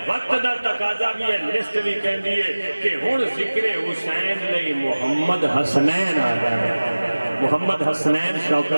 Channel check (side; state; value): both; inverted; correlation -1.00